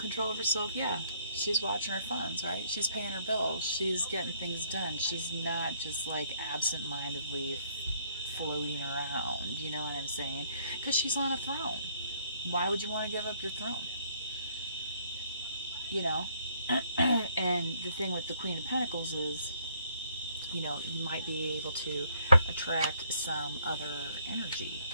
of herself, yeah. She's watching her funds, right? She's paying her bills. She's getting things done. She's not just like absent-mindedly floating around, you know what I'm saying? Because she's on a throne. Why would you want to give up your throne? You know? And the thing with the Queen of Pentacles is, you know, you might be able to attract some other energy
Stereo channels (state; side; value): inverted; both; correlation -0.66